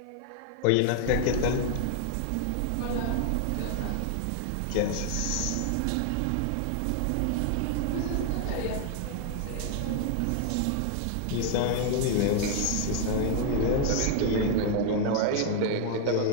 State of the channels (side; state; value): both; different; correlation 0.00